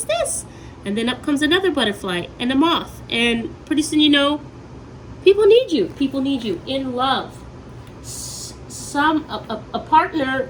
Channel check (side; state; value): both; identical; correlation 1.00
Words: this? And then up comes another butterfly and a moth. And pretty soon you know, people need you. People need you in love. A partner